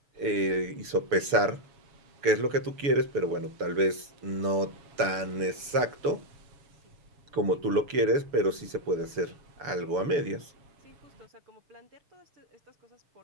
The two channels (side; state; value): left; late; 6.9 ms